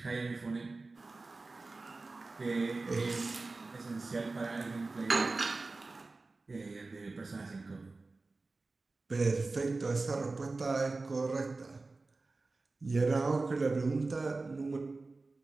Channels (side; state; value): left; quieter; 3.5 dB